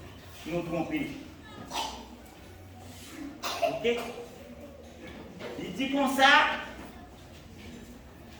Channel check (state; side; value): identical; both; correlation 1.00